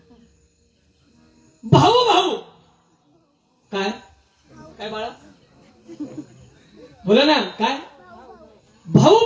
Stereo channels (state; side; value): identical; both; correlation 1.00